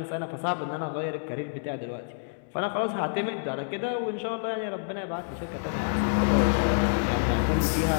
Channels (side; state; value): right; silent; digital silence